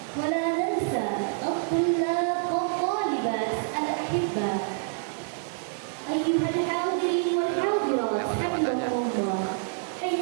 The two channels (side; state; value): left; silent; 58 dB below the other